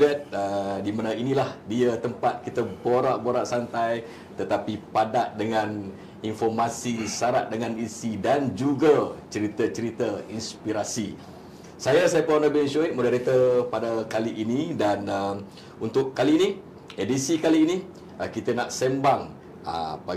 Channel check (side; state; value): both; identical; correlation 1.00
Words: di mana inilah dia tempat kita borak-borak santai tetapi padat dengan informasi, syarat dengan isi dan juga cerita-cerita inspirasi. Saya Saiful Nabil Syuid, moderator pada kali ini, dan untuk kali ini, edisi kali ini, kita nak sembang